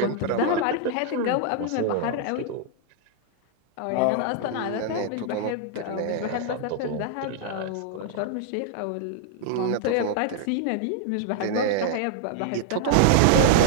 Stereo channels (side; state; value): both; different; correlation -0.01